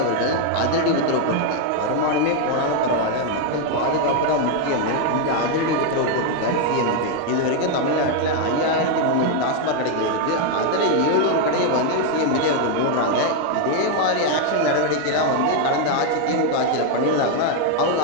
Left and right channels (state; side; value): different; both; correlation 0.01